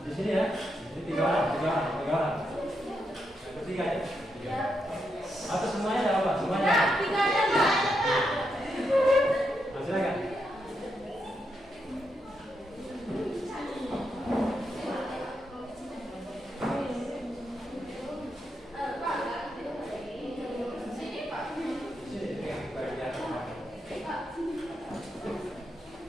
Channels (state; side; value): normal; both; correlation 0.82